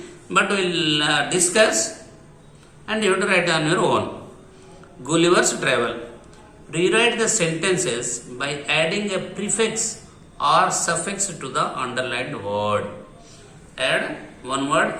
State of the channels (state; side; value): identical; both; correlation 1.00